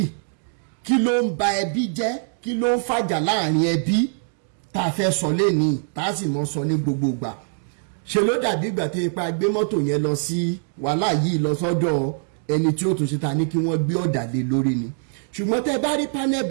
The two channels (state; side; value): silent; left; digital silence